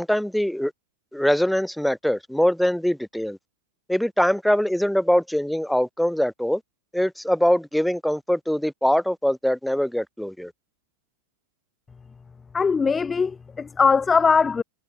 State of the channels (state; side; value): normal; both; correlation 0.97